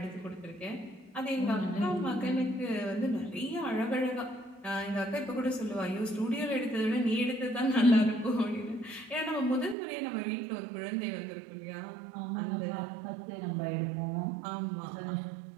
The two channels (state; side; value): drops out; left; at 9.8 s